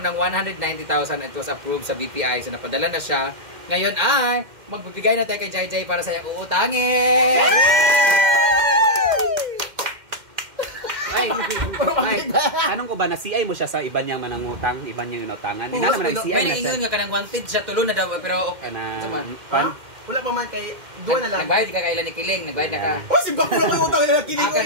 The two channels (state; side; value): late; left; 2.1 ms